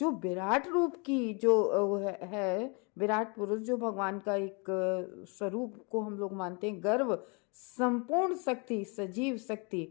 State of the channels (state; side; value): quieter; right; 32.9 dB